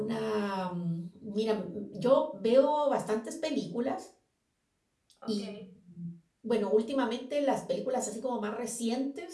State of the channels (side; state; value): both; identical; correlation 1.00